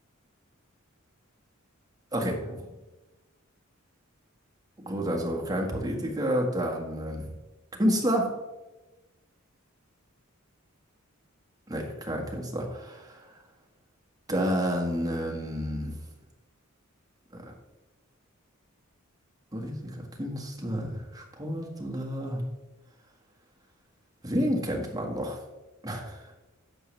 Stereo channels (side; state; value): both; normal; correlation 0.67